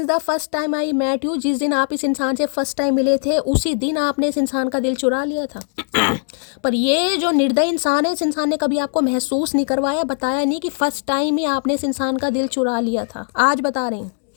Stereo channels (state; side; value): silent; right; 61 dB below the other